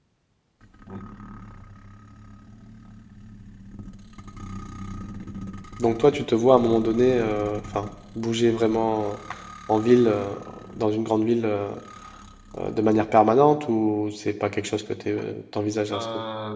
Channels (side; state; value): both; identical; correlation 1.00